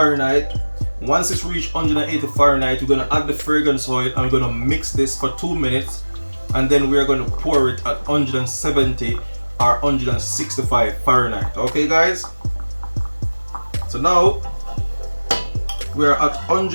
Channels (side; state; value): both; inverted; correlation -1.00